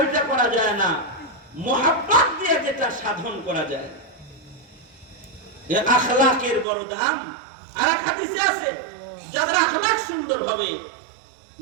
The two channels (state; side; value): drops out; left; at 6.7 s